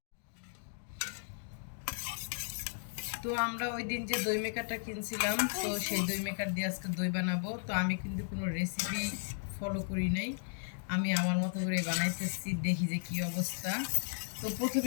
তো আমরা ওই দিন যে দই মেকারটা কিনছিলাম, তো সেই দই মেকার দিয়ে আজকে দই বানাবো। তো আমি কিন্তু কোনো রেসিপি ফলো করি নাই, আমি আমার মতো করে বানাইতেছি, দেখি যে কি অবস্থা। তো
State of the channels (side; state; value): right; silent; digital silence